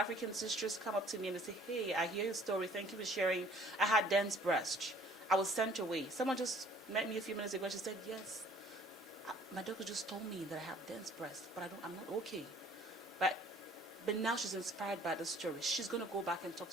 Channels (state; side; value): normal; both; correlation 0.55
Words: sisters come up to me and they say, hey, I hear your story. Thank you for sharing. I had dense breast. I was sent away. Someone just met me a few minutes ago and she said, yes, my doctor just told me that I have dense breast, but I'm not okay. But now she's inspired by the story. She's going to go back and talk